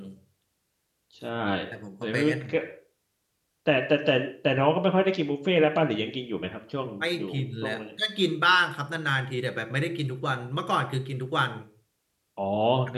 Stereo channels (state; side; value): identical; both; correlation 1.00